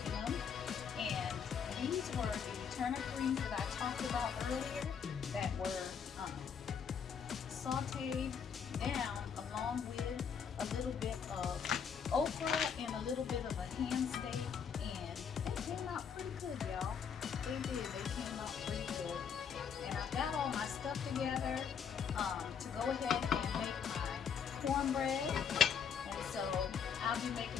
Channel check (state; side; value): quieter; right; 7.1 dB